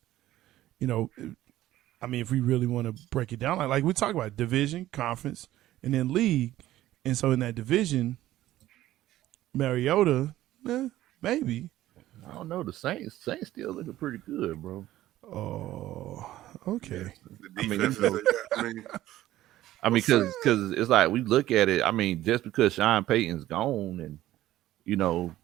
You know, I mean, if we really want to break it down, like we talk about division, conference, and then league, and so in that division, Mariota, maybe. I don't know. The Saints still looking pretty good, bro. Oh, okay. The defense I mean, because it's like we look at it. I mean, just because Sean Payton's gone, and you know,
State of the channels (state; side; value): quieter; left; 14.6 dB